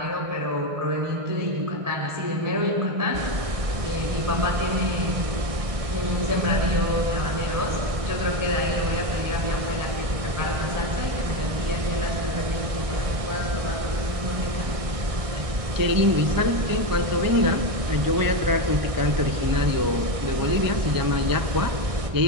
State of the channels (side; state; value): left; late; 1.6 ms